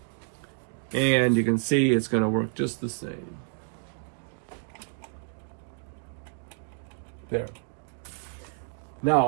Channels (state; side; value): silent; left; digital silence